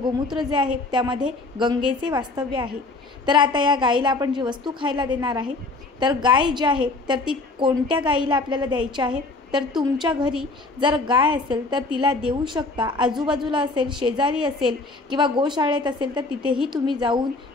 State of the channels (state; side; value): quieter; right; 3.3 dB